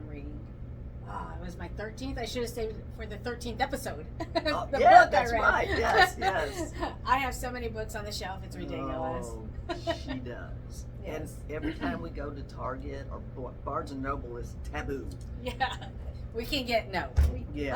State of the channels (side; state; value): both; identical; correlation 1.00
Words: reading. It was my 13th. I should have saved it for the 13th episode. Oh, The yeah, book that's I read. right. Yes. I have so many books on the shelf. It's ridiculous. Oh, she does. Yes. And every time we go to Target or Barnes and Noble is taboo. Yeah. We can get Yeah.